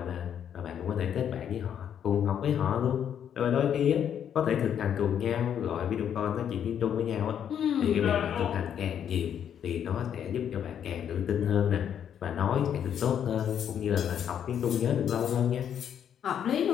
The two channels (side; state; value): right; quieter; 9.0 dB